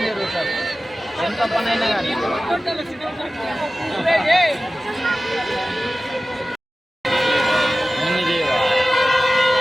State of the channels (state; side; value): normal; both; correlation 0.96